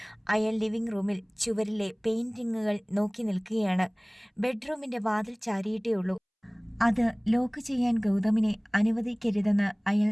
അയാൾ ലിവിംഗ് റൂമിൽ ചുവരിലെ പെയിന്റിങ്ങുകൾ നോക്കി നിൽക്കുകയാണ്. ബെഡ്റൂമിന്റെ വാതിൽ ചാരിയിട്ടേ ഉള്ളൂ. അത് ലോക്ക് ചെയ്യാൻ ഗൗതമിനെ അനുവദിക്കരുതെന്ന് അയാൾ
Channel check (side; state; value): both; identical; correlation 1.00